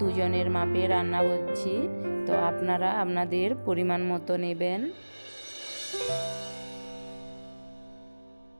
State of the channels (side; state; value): both; inverted; correlation -1.00